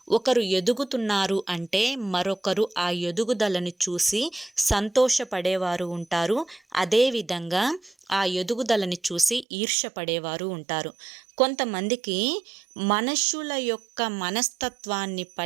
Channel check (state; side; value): drops out; left; at 9.5 s